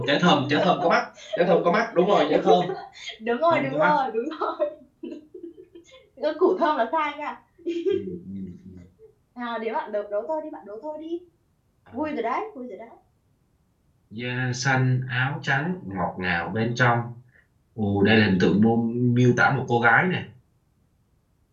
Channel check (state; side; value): identical; both; correlation 1.00